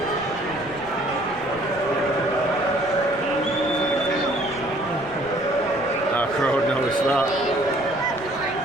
Crowd noticed that.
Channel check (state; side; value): noise; right; rumble, 20 dB below the sound